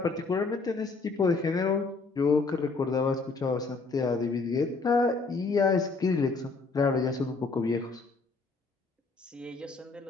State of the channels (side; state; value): right; quieter; 4.0 dB